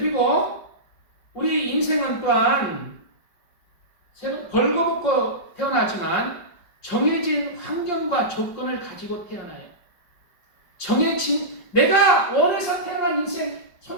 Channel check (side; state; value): right; late; 5.1 ms